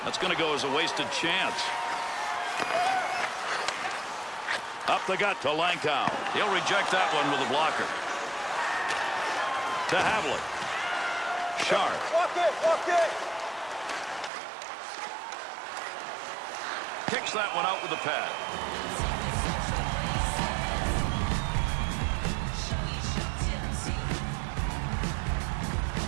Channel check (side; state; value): left; drops out; at 14.3 s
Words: That's going to go as a wasted chance. Up the gut to Lankow. He'll reject that one with a blocker. To Havlik. Sharp. Walk it. Kicks that one out with the pad.